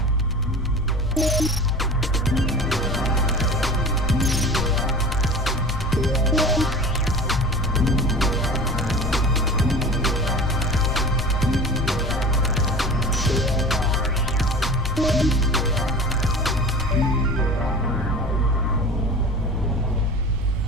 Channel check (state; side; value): normal; both; correlation 0.36